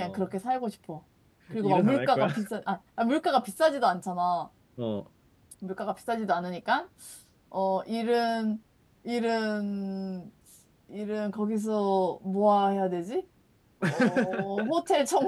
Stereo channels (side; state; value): both; identical; correlation 1.00